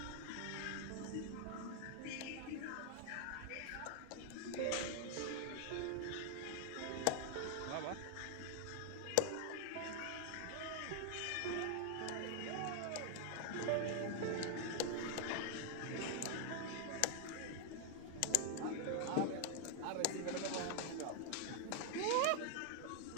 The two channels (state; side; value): different; both; correlation 0.00